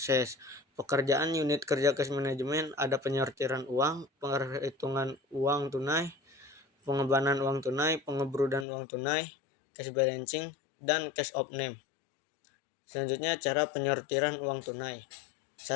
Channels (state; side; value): drops out; right; at 8.7 s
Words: Pekerjaan unit kerja cash management ada penyortiran uang, penghitungan uang tunai, pengembangan uang tunai, pengebrudan uang tunai, cash balancing, dan cash of name. Selanjutnya, cara penyortiran uang tunai.